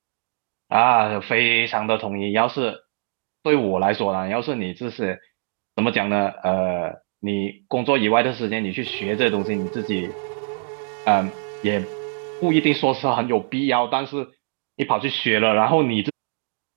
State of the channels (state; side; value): silent; left; digital silence